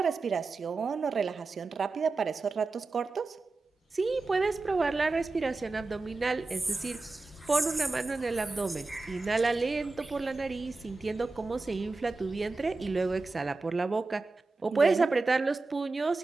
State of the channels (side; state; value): left; quieter; 3.6 dB